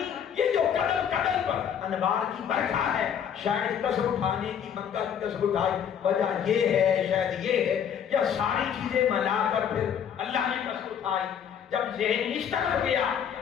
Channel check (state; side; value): quieter; right; 8.4 dB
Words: یہ جو قدم قدم پر انوار کی برکھا ہے، شاید قسم اٹھانے کی، مکہ کی قسم اٹھائی وجہ یہ ہے، شاید یہ ہے، یا ساری چیزیں ملا کر پھر اللہ نے قسم اٹھائی۔ جب ذہن اس طرف گیا،